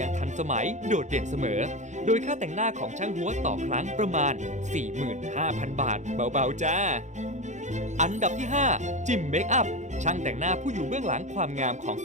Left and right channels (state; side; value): late; left; 0.35 ms